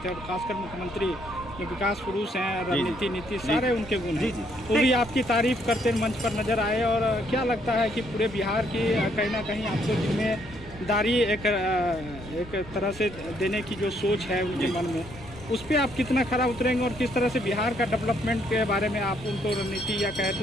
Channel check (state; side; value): normal; both; correlation 0.70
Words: हैं, और खासकर मुख्यमंत्री जो विकास पुरुष हैं, रणनीति नीति सारे उनके गुण हैं, वो भी आपकी तारीफ करते मंच पर नजर आए। और क्या लगता है कि पूरे बिहार की कहीं ना कहीं आपको जिम्मेदारी एक तरह से देने की जो सोच है उनके मन में, उस पर आप कितना खरा उतरेंगे, और किस तरह से बिहार का डेवलपमेंट के बारे में आप उनको रणनीति या कहे